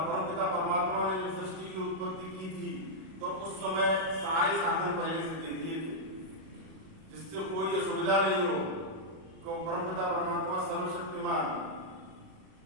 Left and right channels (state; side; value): late; left; 37 ms